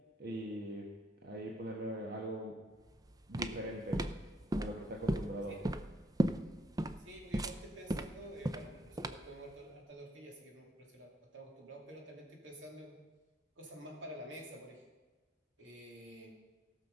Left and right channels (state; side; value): normal; both; correlation 0.71